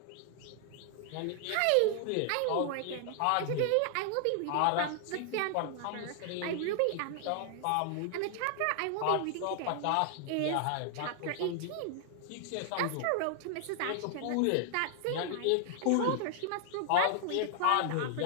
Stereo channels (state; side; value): different; both; correlation 0.00